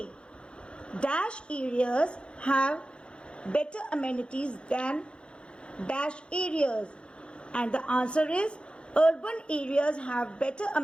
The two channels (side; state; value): right; late; 0.056 ms